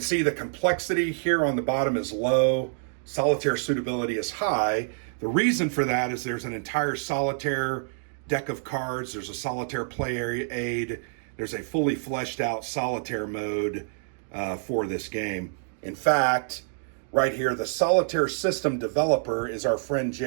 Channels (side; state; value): left; silent; digital silence